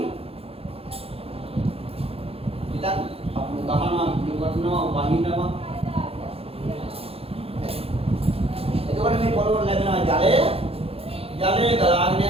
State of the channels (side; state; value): left; late; 0.28 ms